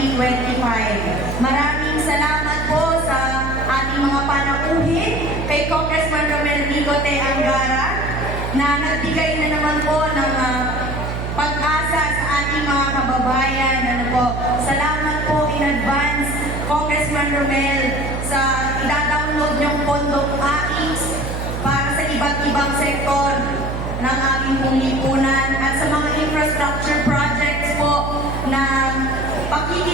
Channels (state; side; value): noise; right; hum, 4 dB below the sound